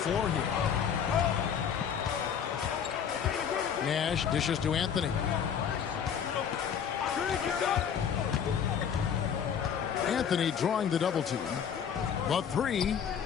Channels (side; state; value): right; quieter; 7.9 dB